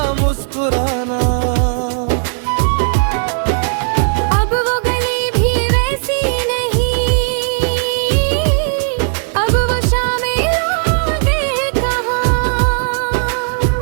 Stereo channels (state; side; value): silent; left; digital silence